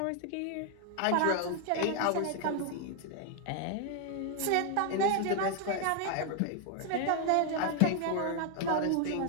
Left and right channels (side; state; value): both; different; correlation 0.00